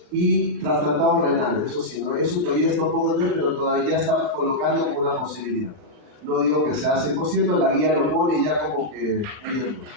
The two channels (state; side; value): late; left; 39 ms